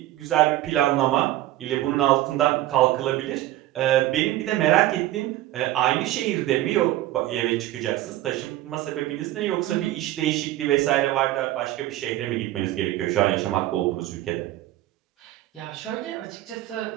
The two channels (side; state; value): left; quieter; 15.2 dB